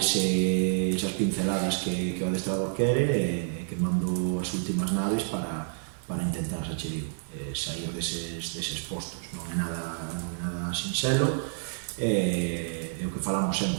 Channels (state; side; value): silent; left; digital silence